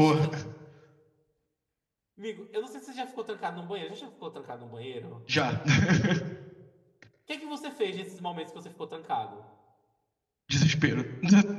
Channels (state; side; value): identical; both; correlation 1.00